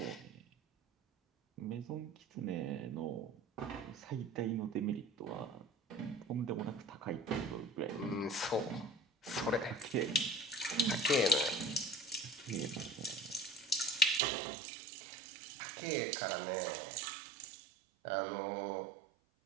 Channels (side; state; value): left; drops out; at 14.2 s